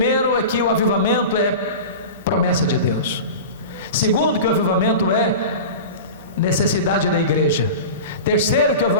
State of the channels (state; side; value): inverted; both; correlation -0.31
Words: é que o avivamento é promessa de Deus. Segundo, que o avivamento é necessidade da igreja. Terceiro, que o